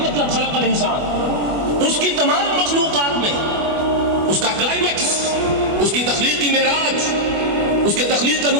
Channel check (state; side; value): late; left; 25 ms